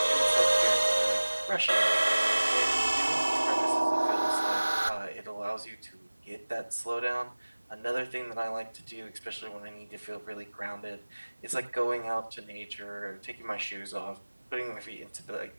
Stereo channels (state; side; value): inverted; both; correlation -1.00